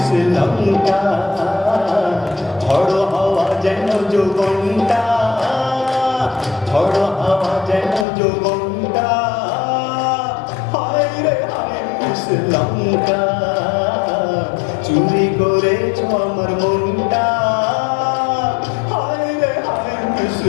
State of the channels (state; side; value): drops out; right; at 8.1 s